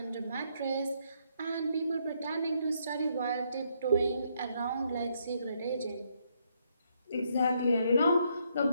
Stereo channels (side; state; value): both; inverted; correlation -0.74